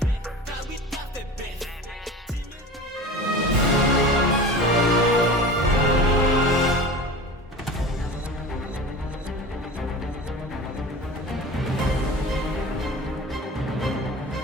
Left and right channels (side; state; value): both; normal; correlation 0.34